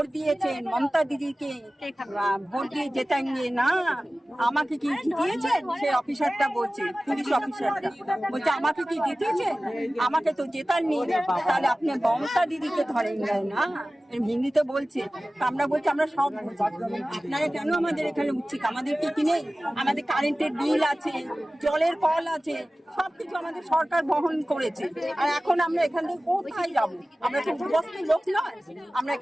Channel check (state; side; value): normal; both; correlation 0.97